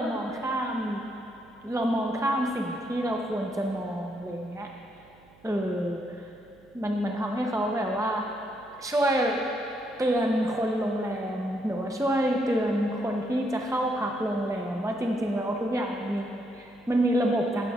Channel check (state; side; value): noise; right; hum, 27 dB below the sound